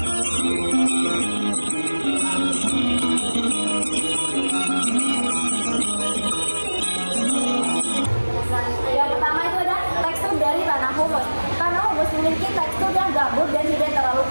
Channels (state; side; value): inverted; both; correlation -1.00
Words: Yang pertama itu ada tekstur dari tanah humus. Tanah humus memiliki tekstur yang gambut dan tidak terlalu